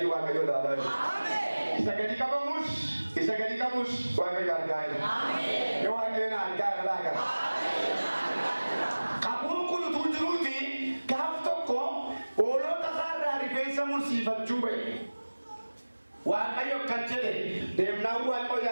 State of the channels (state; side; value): inverted; both; correlation -1.00